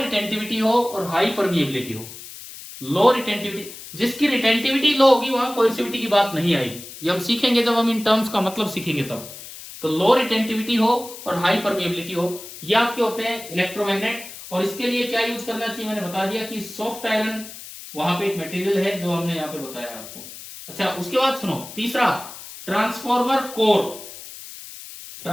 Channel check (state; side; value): noise; left; hiss, 14 dB below the sound